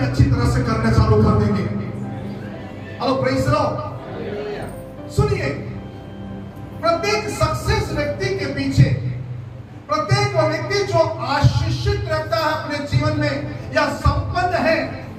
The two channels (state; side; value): identical; both; correlation 1.00